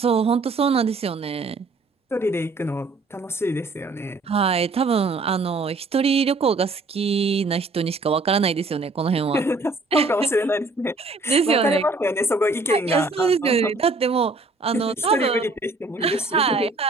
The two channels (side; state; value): left; quieter; 3.5 dB